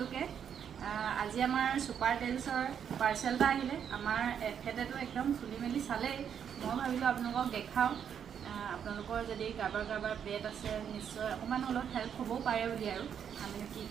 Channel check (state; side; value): quieter; left; 8.2 dB